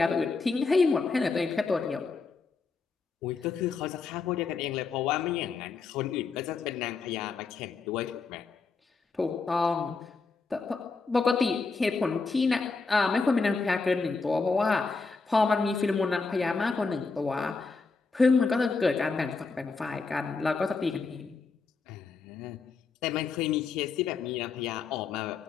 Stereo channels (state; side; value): quieter; right; 4.4 dB